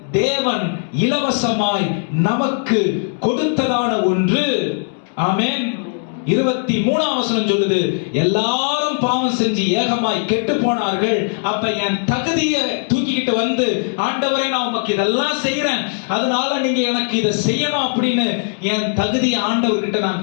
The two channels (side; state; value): right; silent; 67 dB below the other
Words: தேவன் இலவசமாய் நமக்கு கொடுத்ததான ஒன்று. ஆமென். 23ஆம் வசனம் சொல்லுது, எல்லாரும் பாவம் செஞ்சு ஏகமாய் கெட்டு போனார்கள். அப்ப என் தகுதியை தூக்கிக்கிட்டு ஆண்டவரே, நான் உமக்கு இதெல்லாம் செய்யறேன், அதனால நீங்க எனக்கு இதை செய்யணும் அப்படின்னு என் தகுதியை ஆண்டவர்கிட்ட